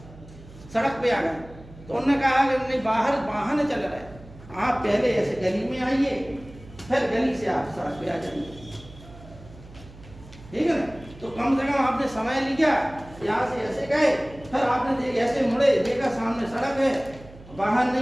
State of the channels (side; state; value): right; noise; hum, 19 dB below the sound